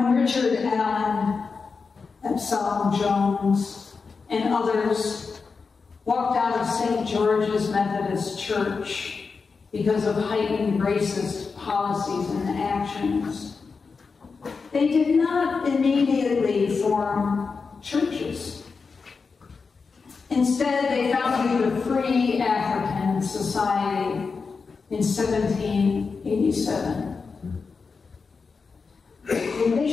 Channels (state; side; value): quieter; right; 4.9 dB